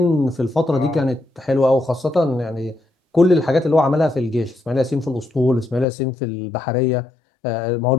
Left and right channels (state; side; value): drops out; right; at 5.9 s